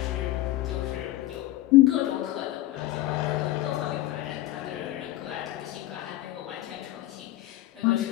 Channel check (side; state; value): right; quieter; 15.7 dB